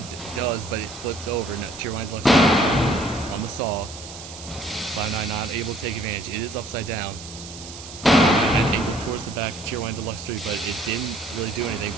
does, but it flips over. Now Cheerwine Deluxe 3 on the saw. Cloud9 not able to take advantage. It is upside down. And angled towards the back of Cheerwine Deluxe 3, but it didn't really do anything.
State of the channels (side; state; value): right; noise; hiss, 13 dB below the sound